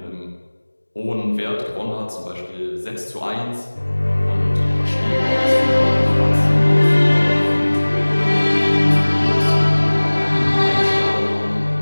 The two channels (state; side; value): inverted; both; correlation -1.00